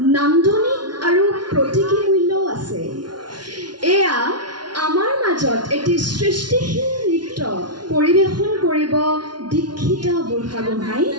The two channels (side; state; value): left; late; 0.70 ms